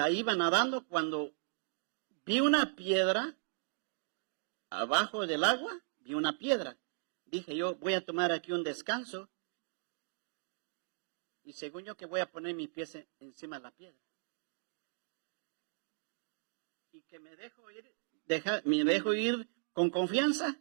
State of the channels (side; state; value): left; silent; digital silence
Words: iba nadando cuando vi una piedra abajo del agua, vi una piedra. Dije yo, voy a tomar aquí un descanso. Y según yo que voy a poner mis pies encima de la piedra. Y que me dejo ir con confianza.